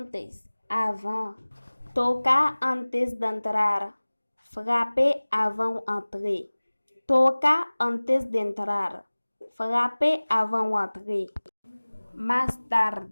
avant. Tocar antes de entrar. Frapper avant entrer. Tocar antes de entrar. Frapper avant entrer. Más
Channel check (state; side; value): inverted; both; correlation -1.00